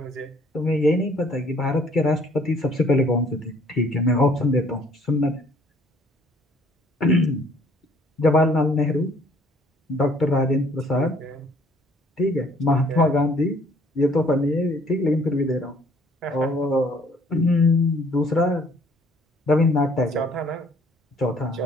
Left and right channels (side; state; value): both; normal; correlation 0.60